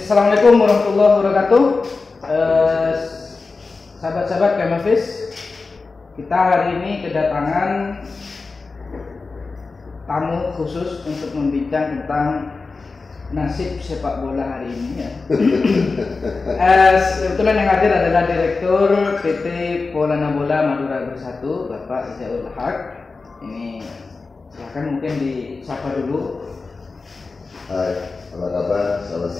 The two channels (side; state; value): right; quieter; 4.1 dB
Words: warahmatullahi wabarakatuh. Sahabat-sahabat Kemafis, kita hari ini kedatangan tamu khusus untuk membincang tentang nasib sepak bola hari ini ya. Kebetulan yang hadir adalah Direktur PT Polana Bola Madura Bersatu, Bapak Izaul Haq. Ini silakan mungkin disapa dulu. Hai, apa kabar? Selamat